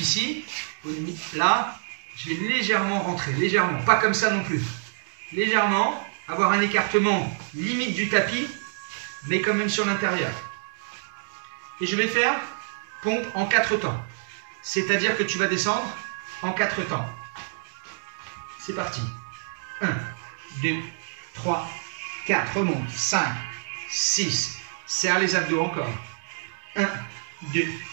là, je vais légèrement rentrer. Légèrement. Pas comme ça non plus. Légèrement. Avoir un écartement limite du tapis, mais quand même sur l'intérieur. Et je vais faire pompe en 4 temps. C'est-à-dire que tu vas descendre en 4 temps. C'est parti. 1, 2, 3, 4. Remonte. 5, 6. Serre les abdos encore. 1, 2,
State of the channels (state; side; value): silent; left; digital silence